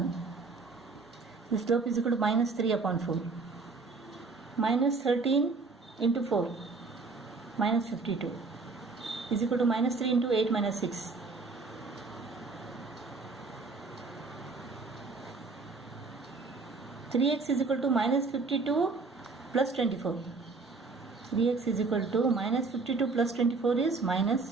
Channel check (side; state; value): left; quieter; 4.1 dB